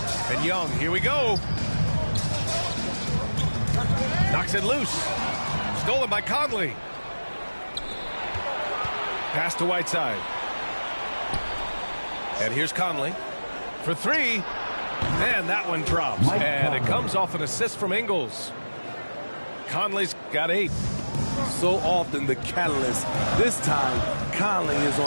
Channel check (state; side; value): inverted; both; correlation -1.00